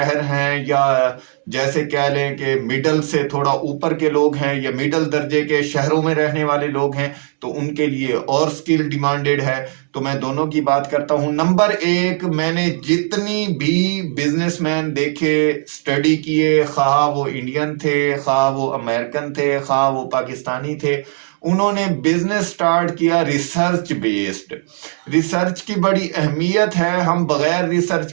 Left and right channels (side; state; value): left; silent; digital silence